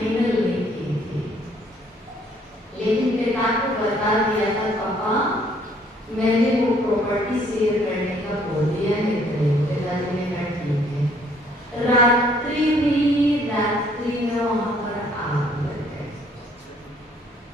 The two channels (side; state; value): both; normal; correlation 0.62